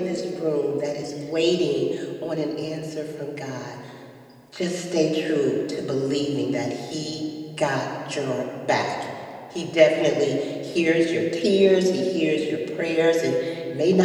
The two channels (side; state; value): both; identical; correlation 1.00